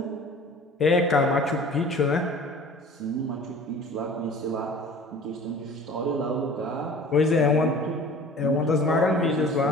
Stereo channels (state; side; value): normal; both; correlation 0.44